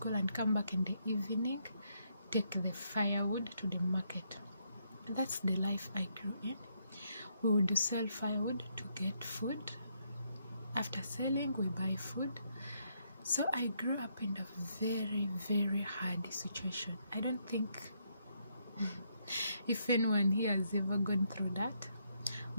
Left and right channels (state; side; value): inverted; both; correlation -0.76